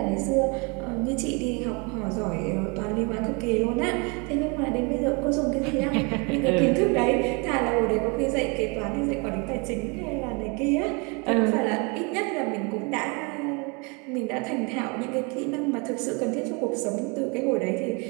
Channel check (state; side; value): quieter; left; 31.4 dB